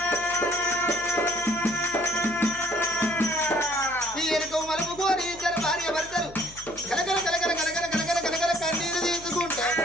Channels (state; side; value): noise; left; hum, 20 dB below the sound